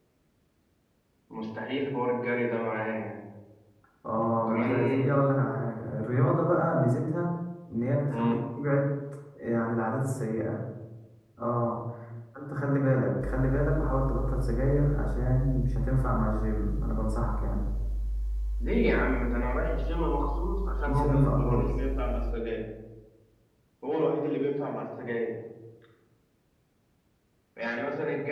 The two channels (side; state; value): both; identical; correlation 1.00